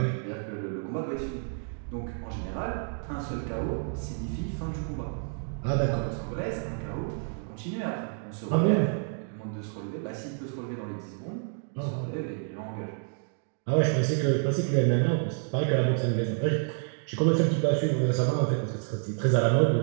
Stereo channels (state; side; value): silent; left; 58 dB below the other